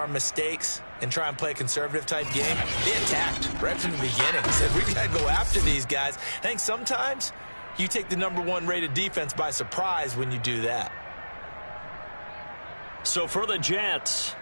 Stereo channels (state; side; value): inverted; both; correlation -1.00